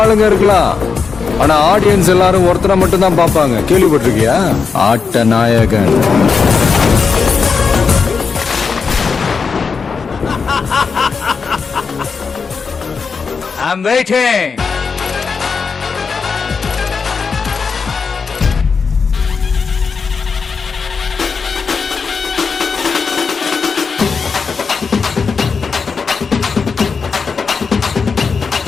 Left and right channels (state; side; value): quieter; right; 5.3 dB